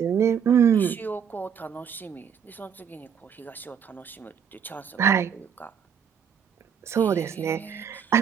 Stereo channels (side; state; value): left; quieter; 7.7 dB